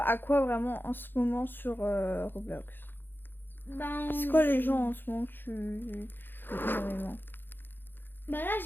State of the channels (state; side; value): late; right; 0.097 ms